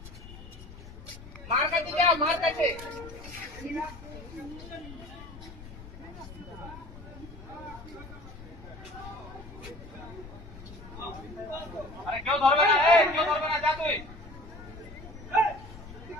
মার কাছে, যা মার কাছে। আরে কেউ ধরবে না, কেউ ধরবে না, যা তুই।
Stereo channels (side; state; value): left; noise; rumble, 15 dB below the sound